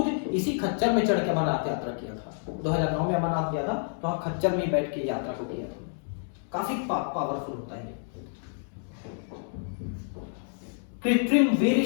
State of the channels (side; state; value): right; silent; digital silence